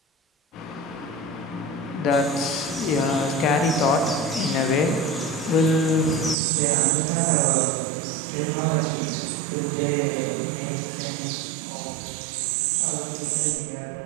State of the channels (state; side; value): drops out; left; at 6.4 s